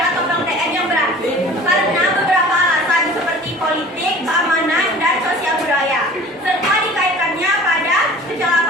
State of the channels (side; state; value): both; normal; correlation 0.44